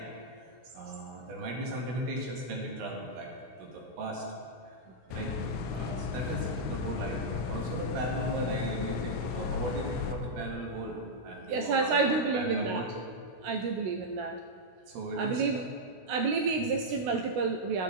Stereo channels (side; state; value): left; late; 16 ms